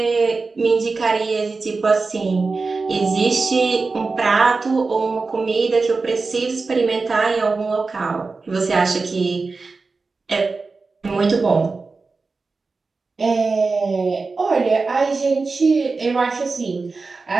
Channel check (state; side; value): quieter; left; 4.1 dB